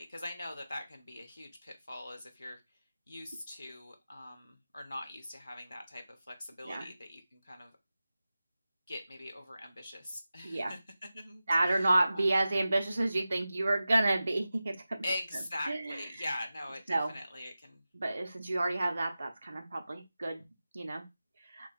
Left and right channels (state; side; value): inverted; both; correlation -0.94